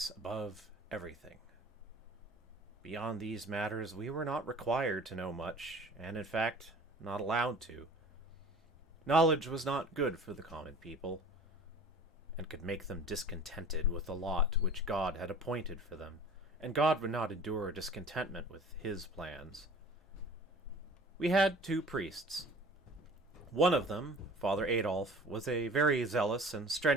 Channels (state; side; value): normal; both; correlation 0.44